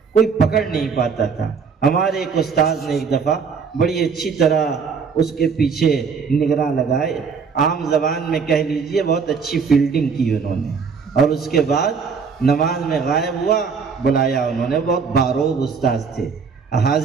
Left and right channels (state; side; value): quieter; left; 5.7 dB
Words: کوئی پکڑ نہیں پاتا تھا۔ ہمارے ایک استاذ نے ایک دفعہ بڑی اچھی طرح اس کے پیچھے نگراں لگائے، عام زبان میں کہہ لیجئے بہت اچھی فیلڈنگ کی انہوں نے، اور اس کے بعد نماز میں غائب ہوا، بلایا انہوں نے، بہت باروب استاذ تھے،